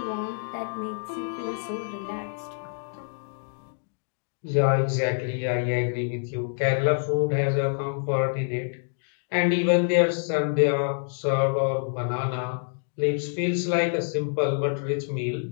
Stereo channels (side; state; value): right; silent; digital silence